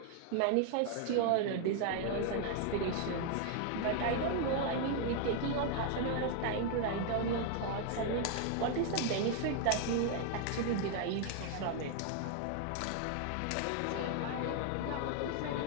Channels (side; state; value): both; different; correlation 0.00